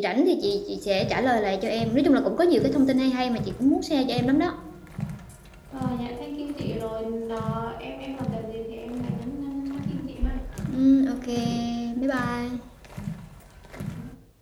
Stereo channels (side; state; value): both; identical; correlation 1.00